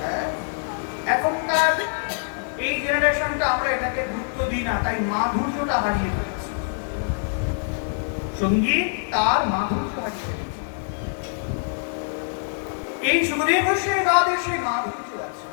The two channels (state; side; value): silent; right; 62 dB below the other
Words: এখনকার এই জেনারেশনটা আমরা এটাকে গুরুত্ব দিই না, তাই মাধুর্যটা হারিয়ে ফেলেছি। সঙ্গীত তার মাধুর্য হারিয়ে ফেলেছে। এই সুখদেব গোস্বামী বাদের সেই মাধুর্য আছে।